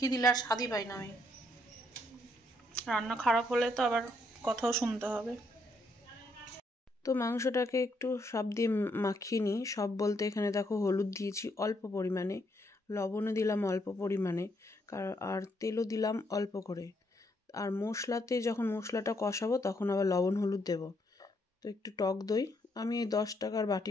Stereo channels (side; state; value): both; normal; correlation 0.73